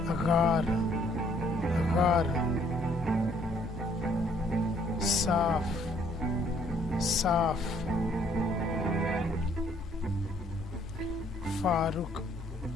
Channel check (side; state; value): both; normal; correlation 0.64